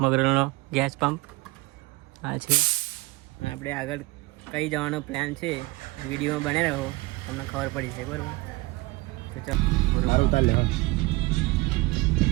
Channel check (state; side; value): quieter; left; 21.9 dB